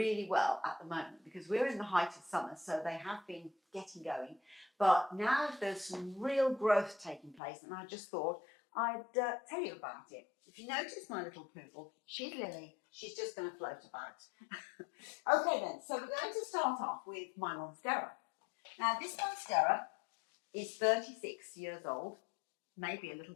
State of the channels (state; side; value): drops out; right; at 7.4 s